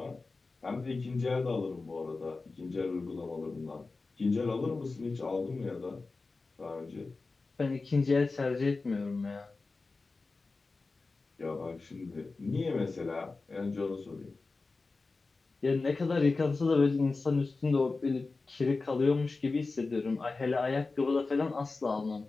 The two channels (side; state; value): right; quieter; 3.8 dB